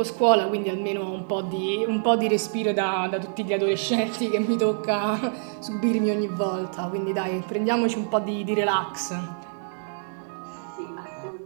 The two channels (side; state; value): left; silent; 61 dB below the other